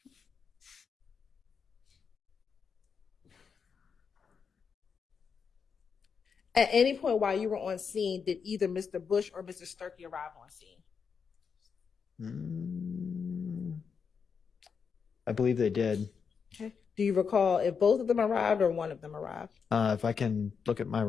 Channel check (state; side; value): quieter; right; 6.1 dB